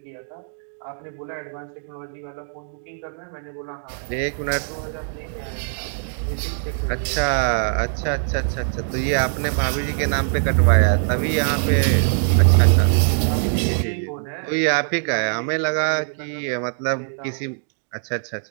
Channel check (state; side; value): silent; left; digital silence